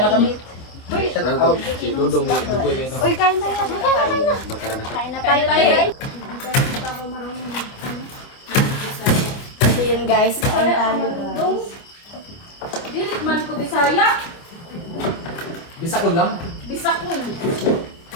kami. Uy, kain na tayo. Kain na tayo. So yun guys, kain tayo guys. Dilit man ko Bisaya. Bisakol lang. Bisakul.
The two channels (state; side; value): late; right; 26 ms